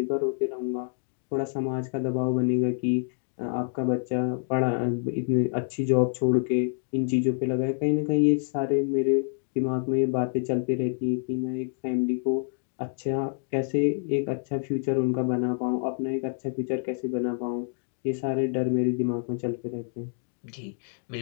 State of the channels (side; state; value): right; silent; digital silence